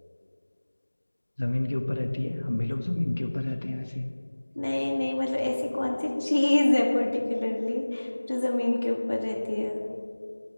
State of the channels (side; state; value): both; inverted; correlation -1.00